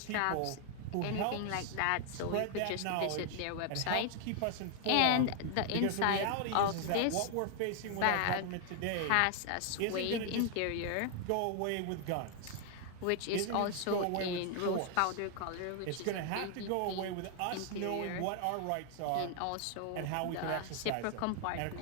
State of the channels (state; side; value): different; both; correlation 0.00